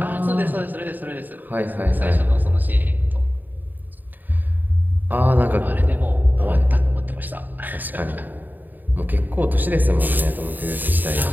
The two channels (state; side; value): late; left; 0.088 ms